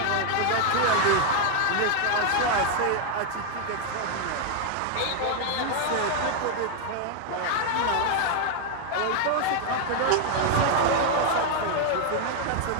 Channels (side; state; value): both; different; correlation 0.00